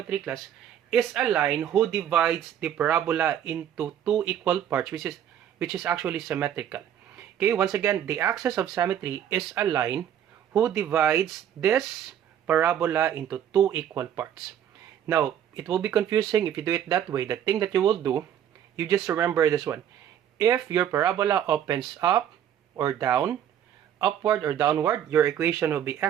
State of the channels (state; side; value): quieter; left; 9.9 dB